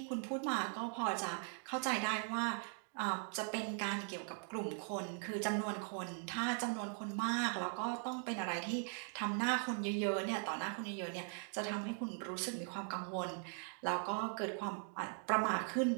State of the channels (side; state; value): left; silent; 51 dB below the other